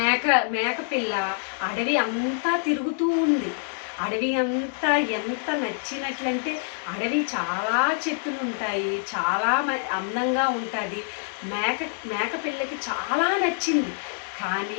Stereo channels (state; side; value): silent; right; digital silence